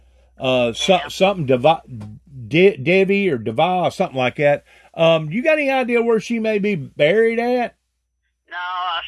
Something Debbie or Deva, something like that. You got any idea where she may be buried at? No, I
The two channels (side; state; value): both; identical; correlation 1.00